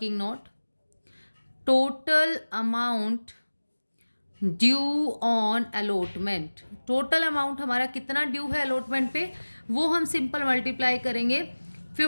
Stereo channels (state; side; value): inverted; both; correlation -1.00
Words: note, total amount due on allotment. Total amount हमारा कितना ड्यू है अलॉटमेंट पे, वो हम सिंपल मल्टीप्लाई करेंगे